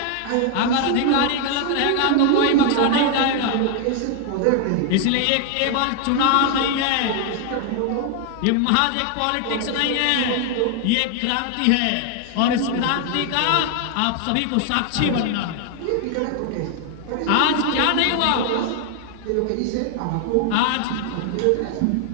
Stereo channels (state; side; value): different; both; correlation 0.00